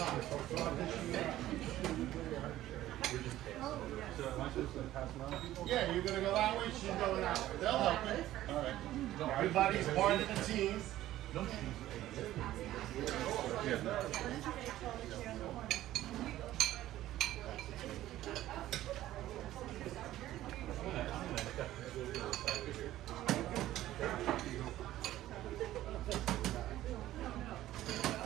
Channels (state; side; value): quieter; left; 14.3 dB